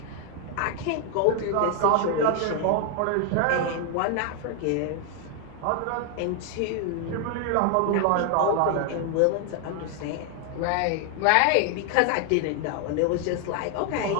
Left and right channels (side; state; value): both; different; correlation 0.00